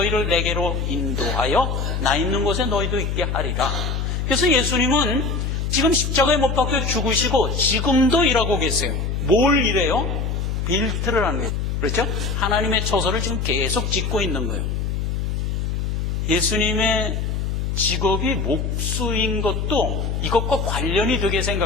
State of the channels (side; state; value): left; noise; hum, 1 dB below the sound